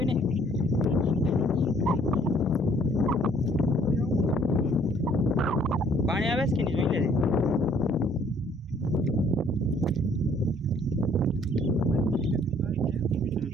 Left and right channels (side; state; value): both; normal; correlation 0.61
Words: ને. પાણી આવે છે કે નહીં જોઈ લેજે.